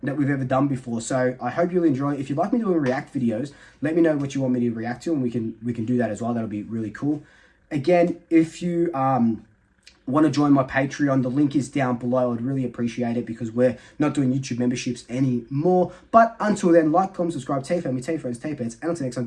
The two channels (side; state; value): both; identical; correlation 1.00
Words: done before. So I hope you'll enjoy it. If you'd like me doing react videos, let me know what you want me to react to, and we can do that as well. That'll be really cool. Again, if you want to join my Patreon, the link is down below. I'd really appreciate it because we're not doing YouTube memberships anymore. But until then, like, comment, subscribe, tell your family, tell your friends, tell your pets, and until next time,